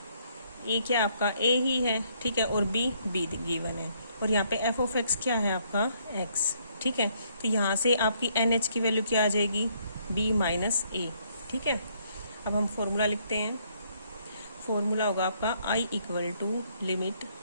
क्या आपका ए ही है, ठीक है, और बी गिवन है, और यहाँ पे एफ ऑफ एक्स क्या है आपका एक्स, ठीक है। तो यहाँ से आपकी एन एच की वैल्यू क्या आ जाएगी, बी माइनस ए, ठीक है। अब हम फॉर्मूला लिखते हैं। फॉर्मूला होगा आपका I equal to limit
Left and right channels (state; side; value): inverted; both; correlation -0.69